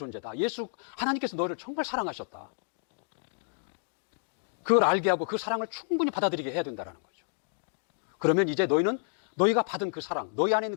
하나님께서 너를 정말 사랑하셨다. 그걸 알게 하고 그 사랑을 충분히 받아들이게 해야 된다는 거죠. 그러면 이제 너희는 너희가 받은 그 사랑, 너희 안에 있는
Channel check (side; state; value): right; silent; digital silence